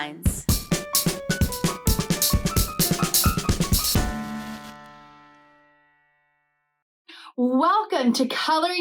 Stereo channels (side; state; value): both; identical; correlation 1.00